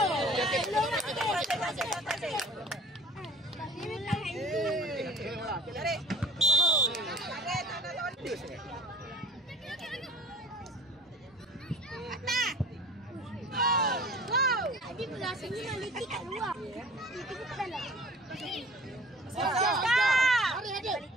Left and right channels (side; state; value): both; normal; correlation 0.47